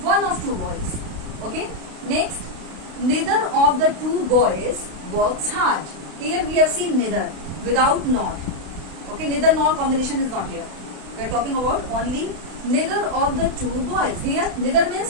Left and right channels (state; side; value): late; left; 32 ms